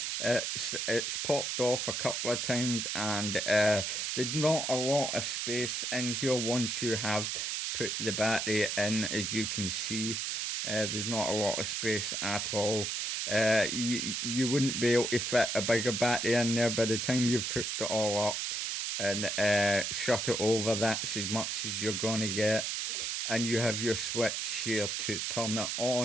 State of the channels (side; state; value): right; noise; hiss, 1 dB below the sound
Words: It's popped off a couple of times, and there's not a lot of space in here once you have put the battery in. As you can see, there's not a lot of space at all. You wouldn't be able to fit a bigger battery in there. By the time you've hooked it all up and shut it over, that's as much as you're going to get. And you have your switch here to turn it